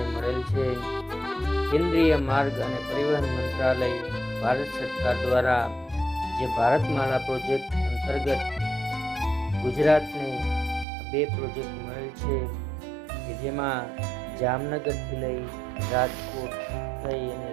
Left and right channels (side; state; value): left; drops out; at 10.9 s